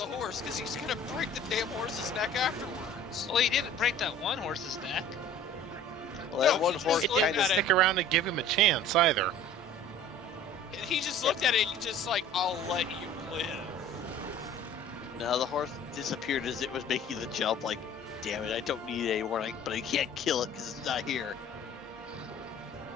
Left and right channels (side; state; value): both; normal; correlation 0.46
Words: horse because he's gonna break the damn horse's neck afterwards. Well, he didn't break that one horse's neck. Well, that No, one he just horse looked kind of at it. Stick around and give him a chance either. He just looked at it and just like, I'll let you live. No, the horse disappeared as it was making the jump. Like, damn it, I don't need it anymore, but I can't kill it because it's not here.